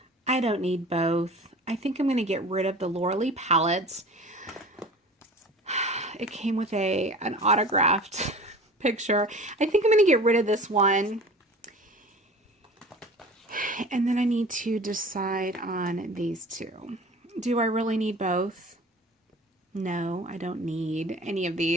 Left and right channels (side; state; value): both; normal; correlation 0.40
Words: I don't need both. I think I'm going to get rid of the Laura Lee palettes. It came with an autographed picture. I think I'm going to get rid of this one. And then I need to decide on these two. Do I really need both? No, I don't need any of